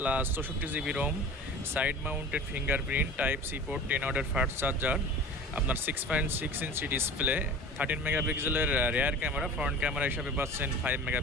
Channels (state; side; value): normal; both; correlation 0.38